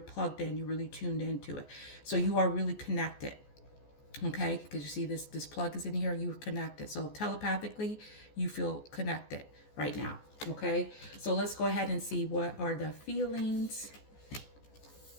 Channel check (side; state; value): right; late; 14 ms